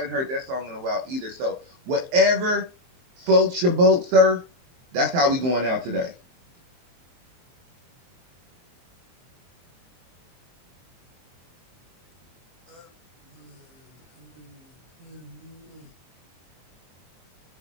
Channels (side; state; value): left; late; 23 ms